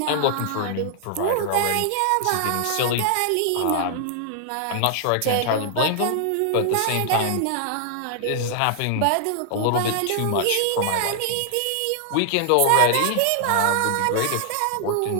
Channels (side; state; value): both; different; correlation -0.01